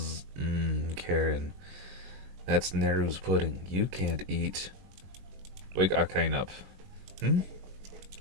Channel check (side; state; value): left; late; 21 ms